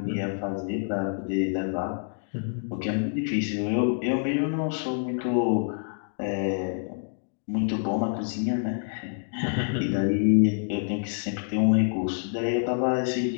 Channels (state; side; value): silent; right; 60 dB below the other